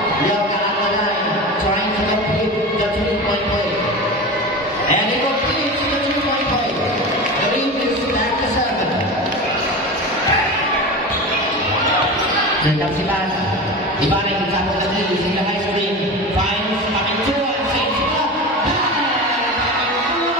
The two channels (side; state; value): both; normal; correlation 0.28